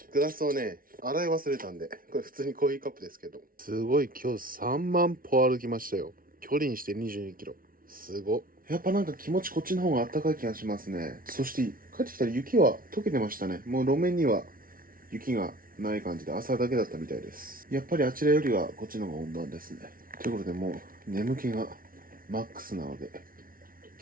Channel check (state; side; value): late; left; 0.42 ms